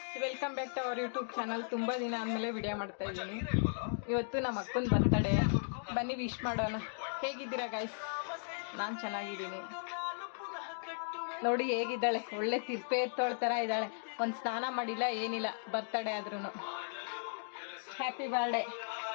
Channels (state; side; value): silent; right; digital silence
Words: welcome back to our YouTube channel. ತುಂಬ ದಿನ ಆದಮೇಲೆ ವಿಡಿಯೋ ಮಾಡ್ತಾ ಇದ್ದೀನಿ. ಇವತ್ತು ನಮ್ಮ ಅಕ್ಕನ ಬರ್ತಡೇ, ಬನ್ನಿ ವಿಶ್ ಮಾಡೋಣ. ಹೇಗಿದ್ದೀರಾ ಗಾಯ್ಸ್? ನಾನು ಚೆನ್ನಾಗಿದ್ದೀನಿ. ನೋಡಿ ಹೇಗಿದ್ದಾಳೆ, ಒಳ್ಳೆ ತಿಪ್ಪೆ ಎತ್ತೋಳ ಥರ ಇದ್ದಾಳೆ. ಒಂದು ಸ್ನಾನ ಮಾಡಿಲ್ಲ, ಏನಿಲ್ಲ, ಬರ್ತಡೇ ಆದ್ರೂ. Happy birthday.